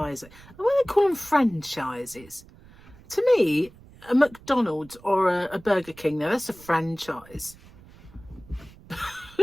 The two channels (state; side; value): noise; right; rumble, 23 dB below the sound